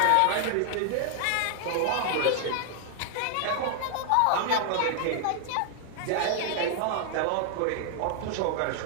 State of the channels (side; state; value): both; different; correlation 0.00